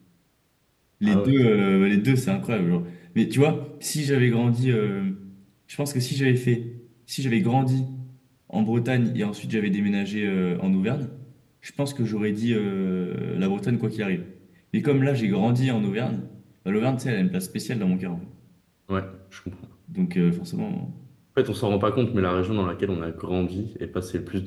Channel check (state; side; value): identical; both; correlation 1.00